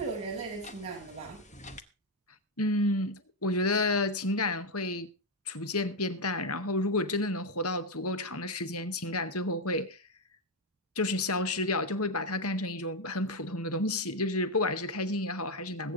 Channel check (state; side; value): normal; both; correlation 0.05